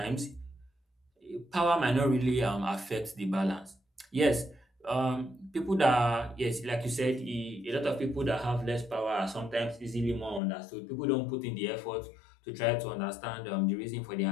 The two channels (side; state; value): right; drops out; at 10.4 s